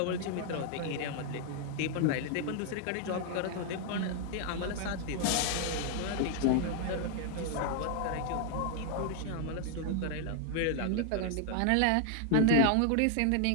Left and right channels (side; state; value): both; different; correlation 0.00